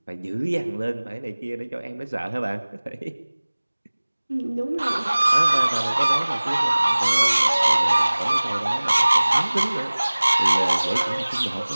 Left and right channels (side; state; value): both; inverted; correlation -1.00